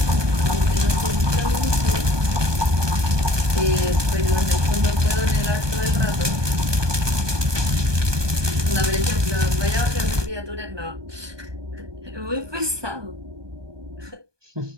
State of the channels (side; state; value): left; late; 1.2 ms